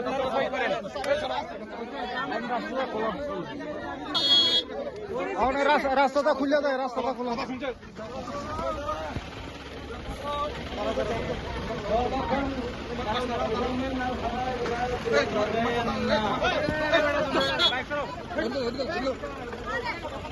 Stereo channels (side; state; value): both; identical; correlation 1.00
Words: রাস্তাটা খুলে দেয় রাস্তাটা খুলে